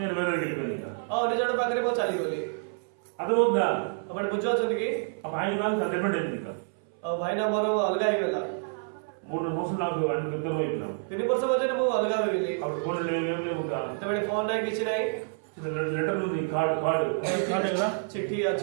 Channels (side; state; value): left; silent; 59 dB below the other